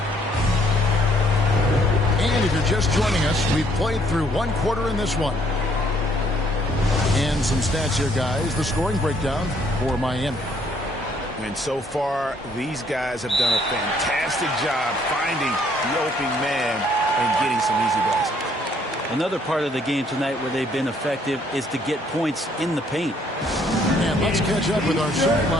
And if you're just joining us, we've played through 1 quarter in this one. And some stats here, guys. The scoring breakdown for Miami. And so far, these guys have done a fantastic job finding the open man and getting some easy baskets. Another part of the game tonight where they've been effective is to get points in the paint. And let's catch up with our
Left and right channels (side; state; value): both; normal; correlation 0.65